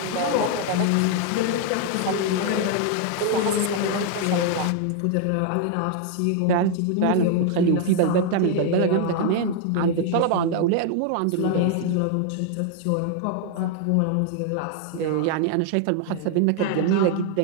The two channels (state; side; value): different; both; correlation 0.00